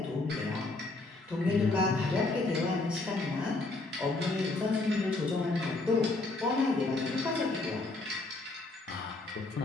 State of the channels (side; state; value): right; quieter; 3.2 dB